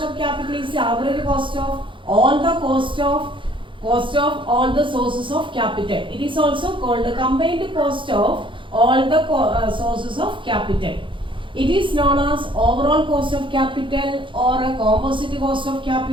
of capital is the average cost of all the cost of all the sources of capital. It is also called the combined cost of all the sources of capital. It is known as overall cost of capital or a composite cost of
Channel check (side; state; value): left; late; 0.24 ms